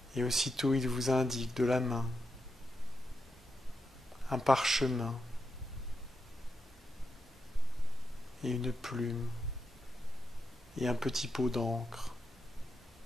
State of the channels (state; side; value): normal; both; correlation 0.86